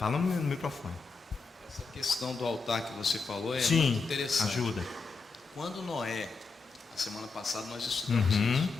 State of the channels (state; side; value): quieter; right; 4.4 dB